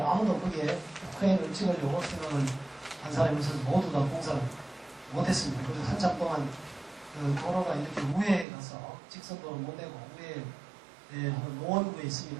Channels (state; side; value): drops out; left; at 8.5 s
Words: 아무도 거기에 크레인을 찍으려고 생각을 한 사람에서 모두 다 공사를 못했습니다. 그래서 한참 동안 그 도로가 이렇게 우회에 가서 직선도로 못 내고 우회에 노원구에